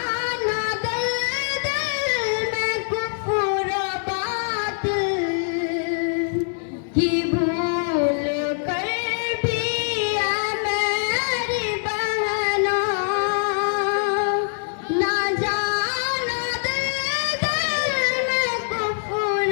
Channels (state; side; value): silent; right; digital silence